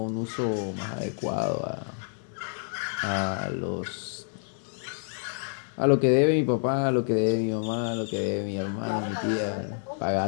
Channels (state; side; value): silent; right; digital silence